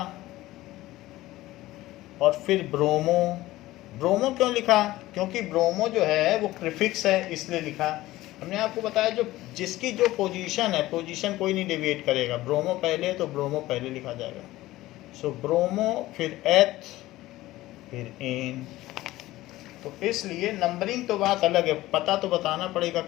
और फिर ब्रोमो। ब्रोमो क्यों लिखा, क्योंकि ब्रोमो जो है वो प्रीफिक्स है, इसलिए लिखा। हमने आपको बताया जो जिसकी जो पोजीशन है, पोजीशन कोई नहीं डेविएट करेगा, ब्रोमो पहले तो ब्रोमो पहले लिखा जाएगा। सो ब्रोमो, फिर एथ, फिर एन। तो इसलिए नंबरिंग तो बात अलग है, पता तो बताना पड़ेगा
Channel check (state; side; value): quieter; right; 16.9 dB